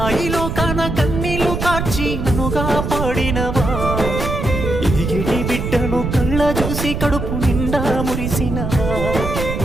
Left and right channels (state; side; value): noise; right; rumble, 3 dB below the sound